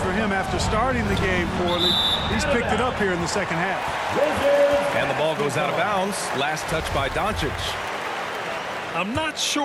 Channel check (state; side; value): identical; both; correlation 1.00